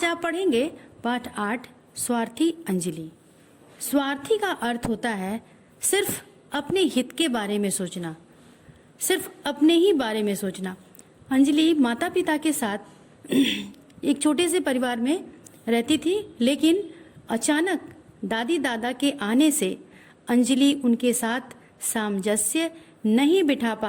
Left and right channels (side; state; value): both; identical; correlation 1.00